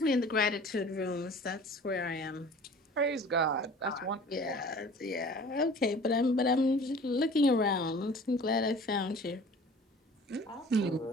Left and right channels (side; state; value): both; normal; correlation 0.45